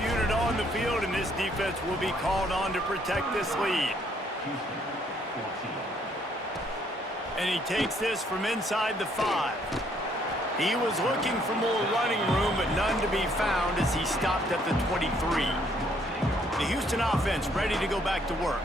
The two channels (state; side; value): normal; both; correlation 0.67